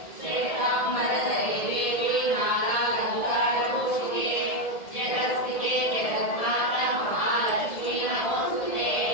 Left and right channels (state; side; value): late; right; 1.7 ms